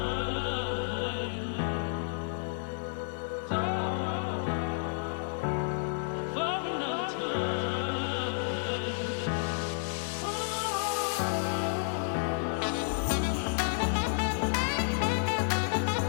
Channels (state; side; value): silent; right; digital silence